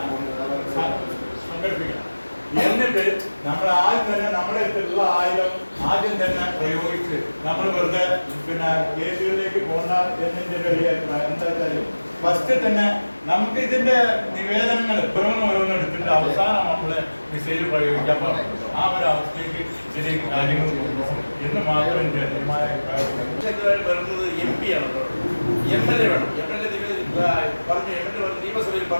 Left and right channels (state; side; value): inverted; both; correlation -1.00